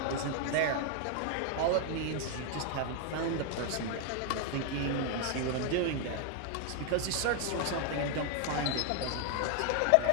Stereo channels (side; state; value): both; different; correlation 0.00